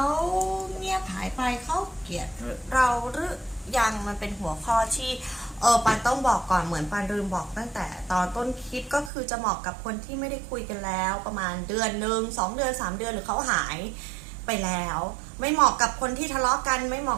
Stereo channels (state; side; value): drops out; left; at 9.1 s